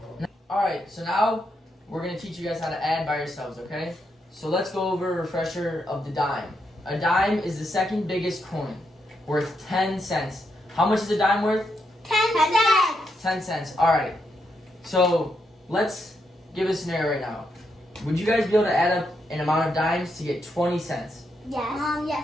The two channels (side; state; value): both; normal; correlation 0.81